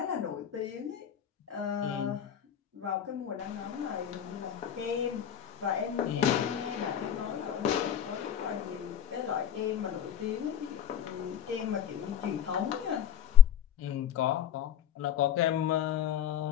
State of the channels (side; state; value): right; quieter; 9.1 dB